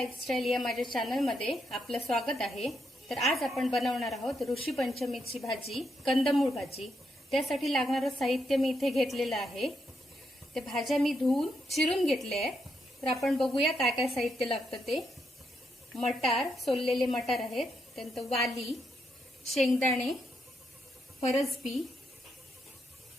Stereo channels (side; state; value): both; normal; correlation 0.80